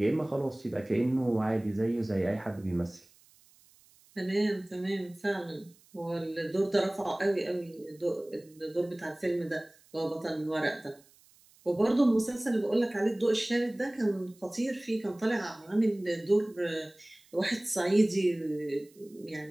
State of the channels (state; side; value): noise; right; hiss, 29 dB below the sound